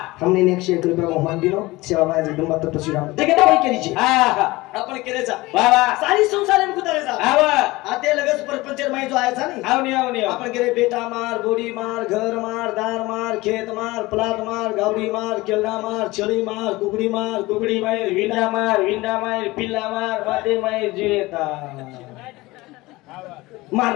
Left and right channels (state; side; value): quieter; right; 20.5 dB